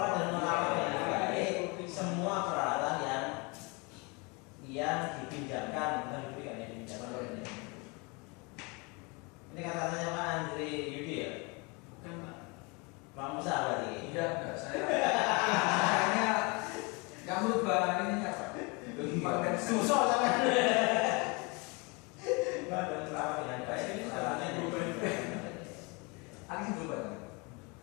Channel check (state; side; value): quieter; right; 29.2 dB